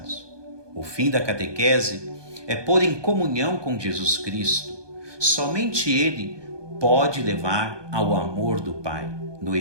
O fim da catequese é pôr em comunhão com Jesus Cristo. Somente ele pode levar ao amor do Pai, no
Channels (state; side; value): late; left; 1.2 ms